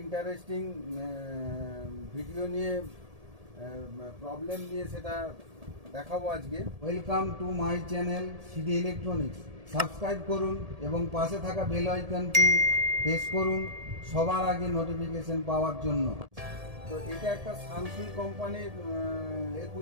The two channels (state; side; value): late; left; 1.7 ms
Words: interesting video নিয়ে প্রবলেম নিয়ে সেটা দেখাবো আজকে। Welcome to my channel CD electronics. Subscribe করুন এবং পাশে থাকা বেল আইকনটি প্রেস করুন সবার আগে নোটিফিকেশন পাওয়ার জন্য। তো এটা একটা সানসুই কোম্পানির